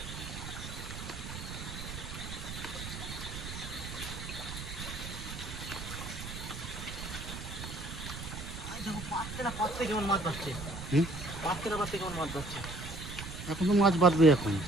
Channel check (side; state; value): right; noise; rumble, 8 dB below the sound